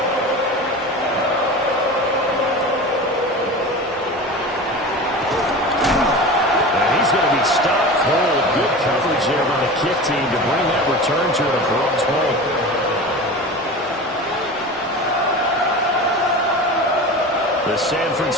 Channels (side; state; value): both; normal; correlation 0.31